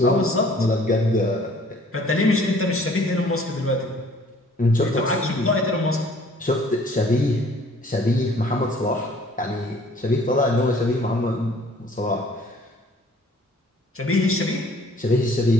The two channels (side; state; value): both; normal; correlation 0.55